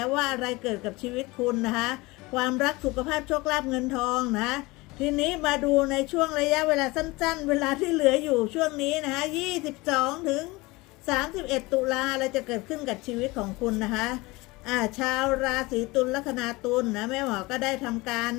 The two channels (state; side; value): quieter; right; 22.6 dB